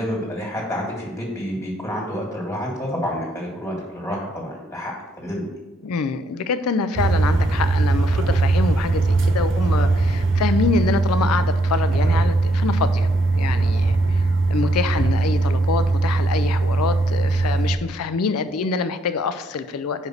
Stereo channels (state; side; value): normal; both; correlation 0.73